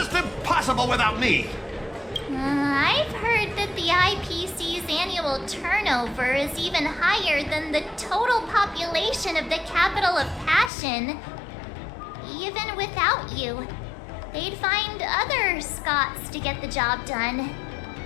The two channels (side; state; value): right; drops out; at 10.7 s